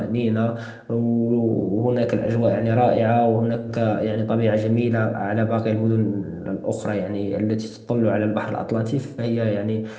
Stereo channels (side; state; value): both; identical; correlation 1.00